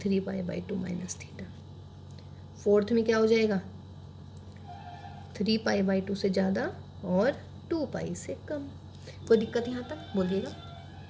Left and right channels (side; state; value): both; identical; correlation 1.00